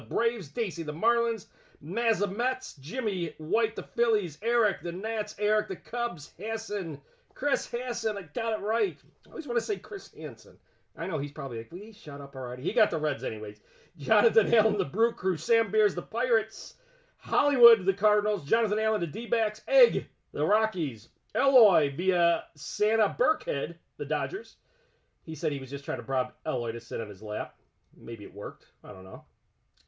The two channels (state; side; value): identical; both; correlation 1.00